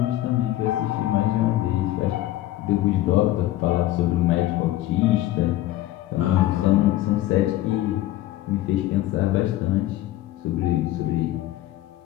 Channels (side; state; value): right; quieter; 15.0 dB